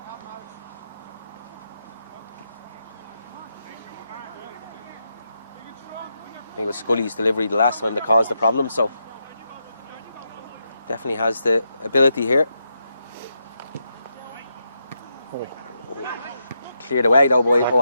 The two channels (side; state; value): both; inverted; correlation -0.83